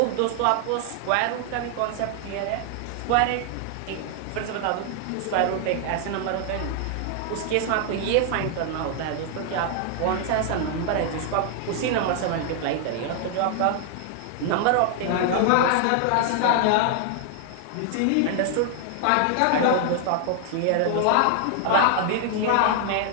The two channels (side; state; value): both; different; correlation 0.00